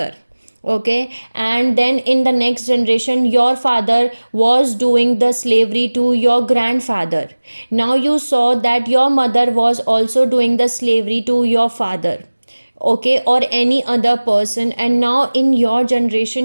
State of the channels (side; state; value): both; inverted; correlation -1.00